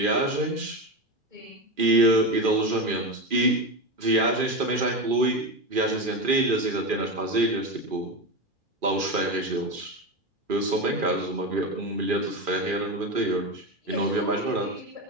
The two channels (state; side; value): late; left; 2.4 ms